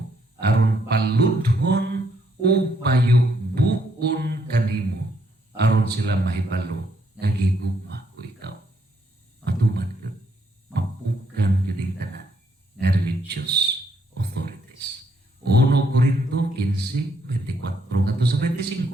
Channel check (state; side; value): normal; both; correlation 0.72